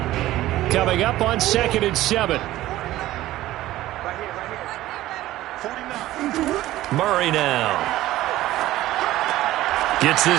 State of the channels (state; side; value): quieter; left; 15.5 dB